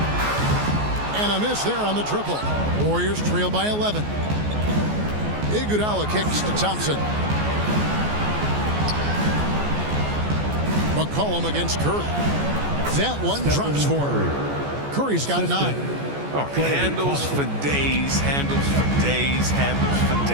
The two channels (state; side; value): late; left; 14 ms